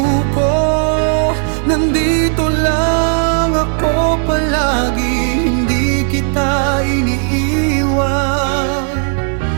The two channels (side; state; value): left; silent; 55 dB below the other